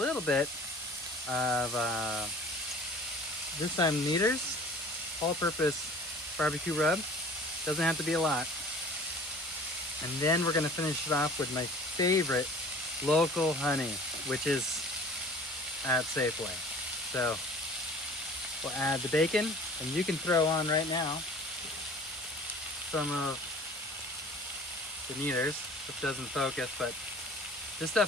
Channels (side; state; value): both; normal; correlation 0.44